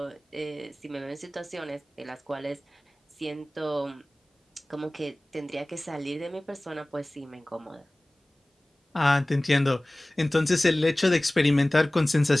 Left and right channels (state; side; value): normal; both; correlation 0.98